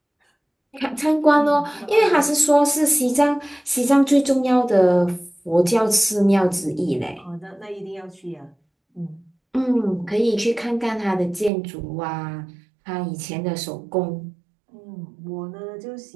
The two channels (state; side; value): drops out; left; at 11.5 s